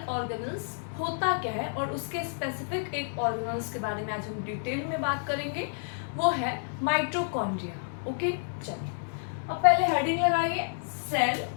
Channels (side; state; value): right; silent; digital silence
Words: ऑर्गेनल्स होता क्या है और उसके स्पेसिफिक एक ऑर्गेनल्स के बारे में आज हम डिटेल में बात करेंगे. वो है माइटोकॉन्ड्रिया. ओके, चलिए अब पहले हेडिंग लगाइए सेल